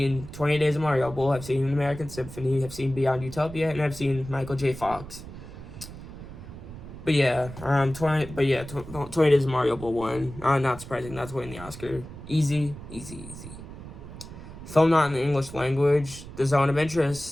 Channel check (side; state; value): right; noise; rumble, 13 dB below the sound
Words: 20 Days of Mariupol, I've seen An American Symphony, I've seen Beyond Utopia, and I've seen Michael J. Fox. But yeah, 20 Days of Mariupol won. Not surprising, that's winning the Oscar. Easy. Film not in the English language. The Zone of